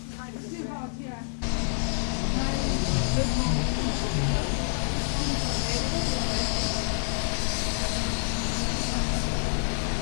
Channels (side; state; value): right; silent; 60 dB below the other